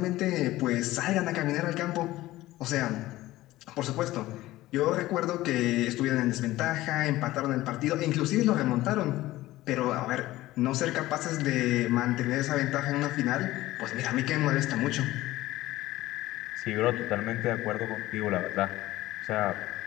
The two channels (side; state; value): right; quieter; 16.8 dB